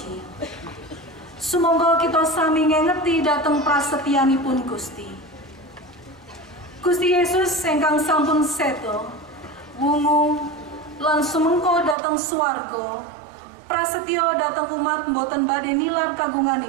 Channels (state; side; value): drops out; left; at 12.0 s